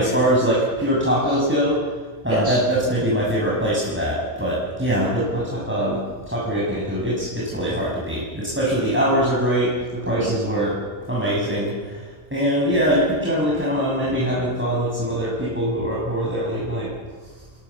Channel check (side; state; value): both; normal; correlation 0.05